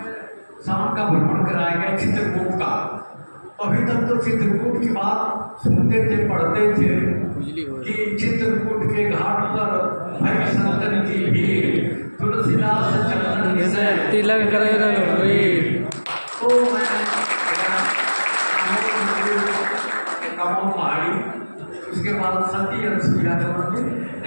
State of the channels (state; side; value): inverted; both; correlation -1.00